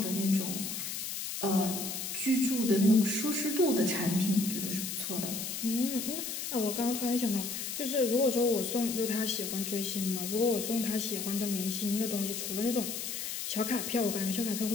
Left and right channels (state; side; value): noise; left; hiss, 4 dB below the sound